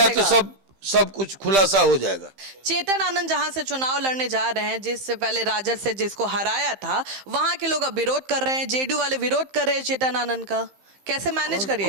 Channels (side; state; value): left; late; 15 ms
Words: तो चलेगा। सब कुछ खुलासा हो जाएगा। चेतन आनंद जहां से चुनाव लड़ने जा रहे हैं, जिससे पहले राजद से जिसको हराया था, वहां के लोग अब विरोध कर रहे हैं, जेडीयू वाले विरोध कर रहे हैं चेतन आनंद का। कैसे मैनेज